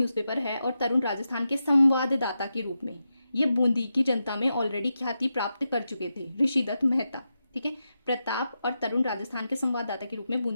है और तरुण राजस्थान के संवाददाता के रूप में ये बूंदी की जनता में ऑलरेडी ख्याति प्राप्त कर चुके थे, ऋषि दत्त मेहता। ठीक है, प्रताप और तरुण राजस्थान के संवाददाता के रूप में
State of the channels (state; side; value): inverted; both; correlation -0.88